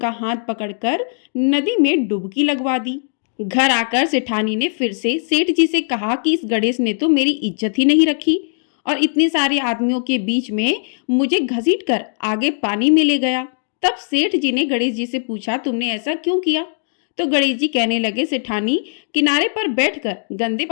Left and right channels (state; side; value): silent; right; digital silence